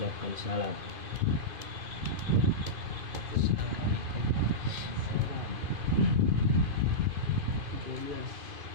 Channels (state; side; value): late; left; 2.4 ms